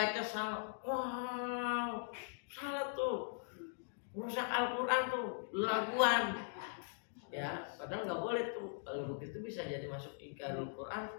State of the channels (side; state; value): right; silent; digital silence